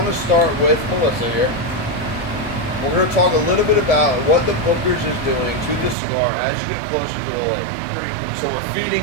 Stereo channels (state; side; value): drops out; left; at 6.0 s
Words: to start with Melissa here. We're going to talk a little bit about what the Bookers is doing to the cigar as you get closer to the label. So we're